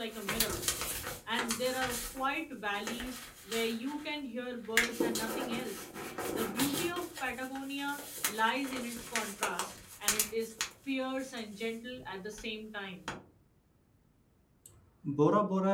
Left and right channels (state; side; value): identical; both; correlation 1.00